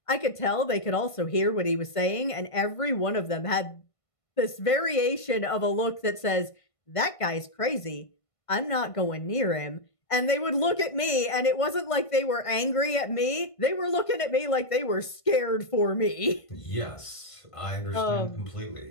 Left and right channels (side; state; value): right; late; 1.5 ms